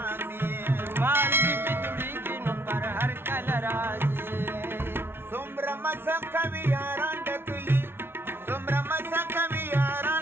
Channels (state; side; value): late; left; 0.11 ms